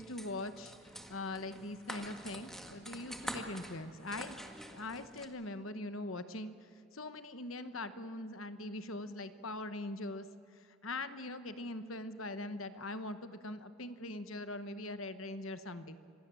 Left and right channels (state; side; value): normal; both; correlation 0.32